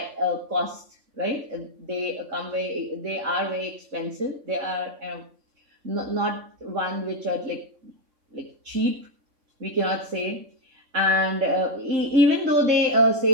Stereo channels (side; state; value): left; late; 3.5 ms